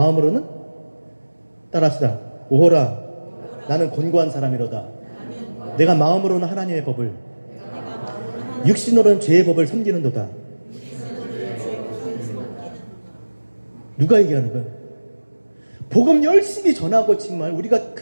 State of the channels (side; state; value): both; inverted; correlation -1.00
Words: 따라합시다. 오라 나는 권고한 사람이로다. 내가 마음으로는 하나님의 법을, 육신으로는 죄의 법을 섬기는도다. 누가 얘기하는 거예요? 복음 열심히 전하고 정말 우리가